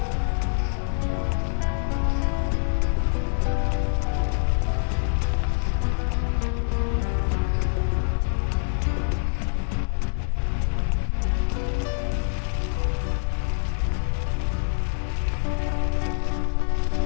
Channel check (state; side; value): silent; right; digital silence